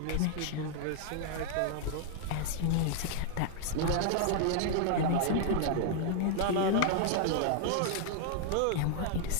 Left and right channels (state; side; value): different; both; correlation 0.00